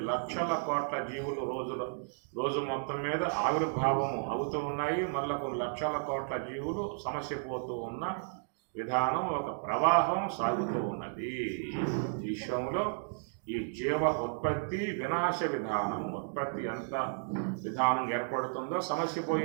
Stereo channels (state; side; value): silent; left; digital silence